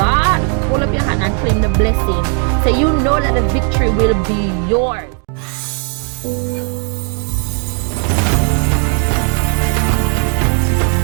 hold up your hand and claim the blessing. So you know that the victory will be yours.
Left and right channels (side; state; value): left; quieter; 38.8 dB